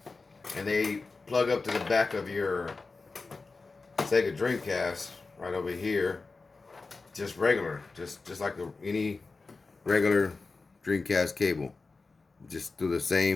And they plug up to the back of your Sega Dreamcast right over here, just regular, just like any regular Dreamcast cable. Just through the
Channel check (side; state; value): right; quieter; 3.9 dB